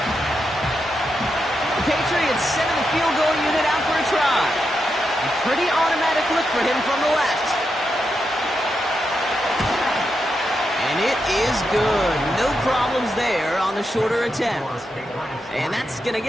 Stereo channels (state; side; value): normal; both; correlation 0.85